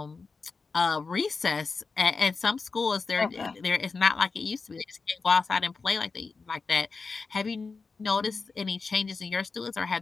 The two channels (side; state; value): right; quieter; 4.5 dB